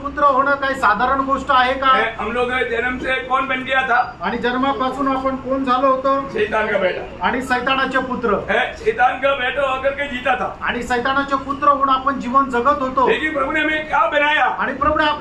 पुत्र होणं काही साधारण गोष्ट आहे का? हम लोग जन्म से कौन बन गया था? आणि जन्मापासून आपण कोण झालो होतो? शैतान का बेटा। आणि सैतानाचे पुत्र। शैतान का बेटा होकर के जीता था। आणि सैतानाचे पुत्र होऊन आपण जीवन जगत होतो। लेकिन प्रभु ने हमें क्या बनाया? आणि प्रभूने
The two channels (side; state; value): both; identical; correlation 1.00